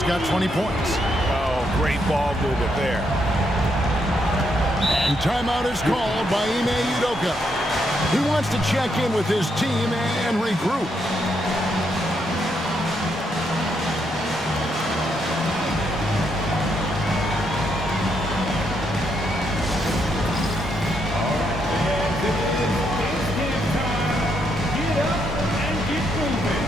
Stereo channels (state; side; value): normal; both; correlation 0.77